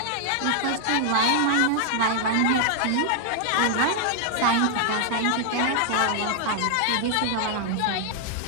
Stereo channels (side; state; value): both; different; correlation 0.00